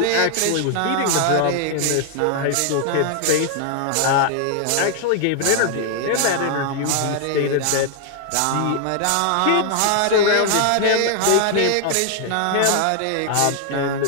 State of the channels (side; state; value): both; different; correlation 0.00